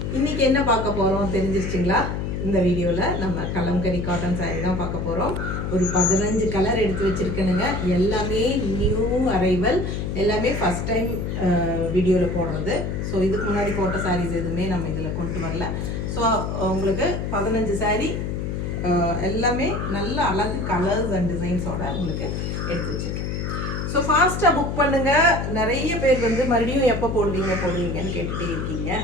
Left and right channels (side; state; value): left; noise; hum, 3 dB below the sound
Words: இன்னைக்கு என்ன பார்க்க போறோம் தெரிஞ்சிருச்சுங்களா? இந்த வீடியோல நம்ம கலம்கரி காட்டன் saree தான் பார்க்க போறோம். ஒரு 15 கலர் எடுத்து வச்சிருக்கேனுங்க. எல்லாமே நியூ அரைவல், எல்லாமே ஃபர்ஸ்ட் டைம் வீடியோல போடுறது. ஸோ இதுக்கு முன்னாடி போட்ட sarees எதுவுமே நம்ம இதில் கொண்டு வரல. ஸோ உங்களுக்கு 15 saree எல்லாமே நல்ல அழகு கலர்ஸ் அண்ட் டிசைன்ஸோட உங்களுக்கு எடுத்து வச்சிருக்கேன். ஸோ ஃபாஸ்ட்டாக புக் பண்ணுங்கள். நிறைய பேர் வந்து மறுபடியும் எப்போ போடுவீங்கன்னு கேட்டுகிட்டே இருக்கீங்க.